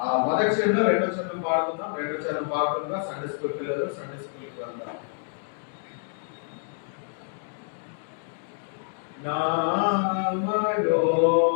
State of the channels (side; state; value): right; silent; digital silence